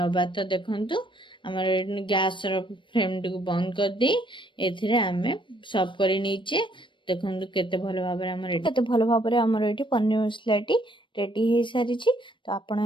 तो देखंतु हमर गैस रो फ्लेम टी को बंद कर दे एथिरे आमे सर्व करी नीचे। देखंतु केते भलो भाबरे हमर एठी पनीर मसलाटी रेडी हो सारी छी। तो आपण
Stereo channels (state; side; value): late; right; 0.24 ms